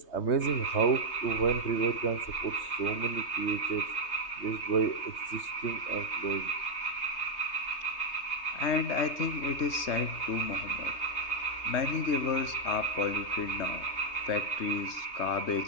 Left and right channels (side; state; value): right; late; 3.2 ms